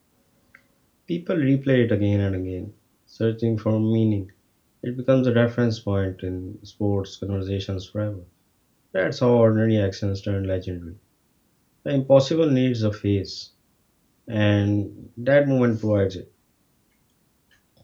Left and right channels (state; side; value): identical; both; correlation 1.00